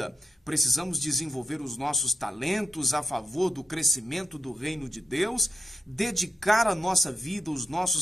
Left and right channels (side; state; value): both; normal; correlation 0.86